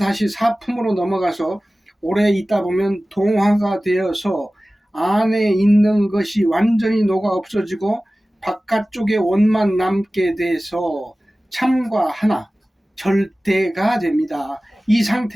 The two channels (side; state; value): both; normal; correlation 0.97